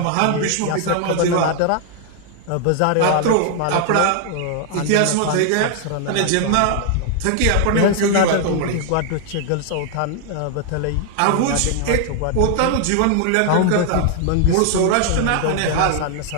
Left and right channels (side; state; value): both; different; correlation 0.00